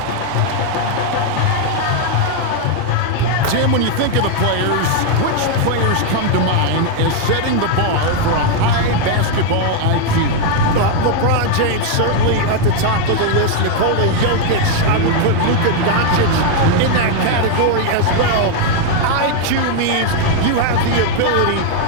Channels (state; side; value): different; both; correlation 0.00